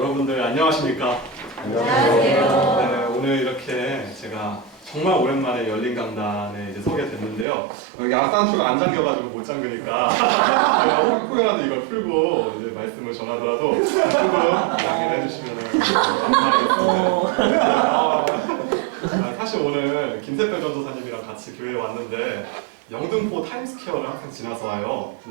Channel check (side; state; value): left; drops out; at 7.5 s